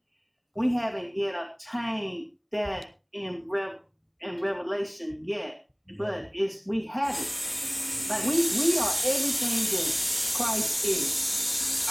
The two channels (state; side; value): identical; both; correlation 1.00